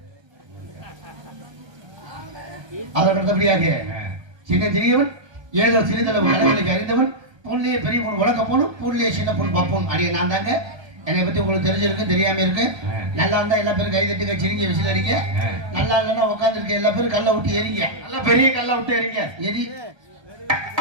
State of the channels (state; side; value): late; left; 1.3 ms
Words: அதற்கடுத்தபடியாக சின்ன சிறியவன் ஏதோ சிறிதளவு அளவுகளுக்கு அறிந்தவன் பொருளையே பெரிய பொண்ணு உலக போனும் பொருளையே சின்ன பொண்ணு பார்ப்போம் அப்படியே நான் தாங்க. என்னை பத்தி உங்களுக்கு தெரிஞ்சிருக்கு தெரியாம இருக்கு. நல்லா இருந்தா எல்லா பேரும் கை தட்டுங்க சிரிங்க விசில் அடிங்க. நல்லா இல்லைன்னா உட்காந்து இருக்க எல்லா பேரும் கல்லை விட்டு எரிங்க. நல்லா பெரிய கல்லை விட்டு எரிங்க எரி.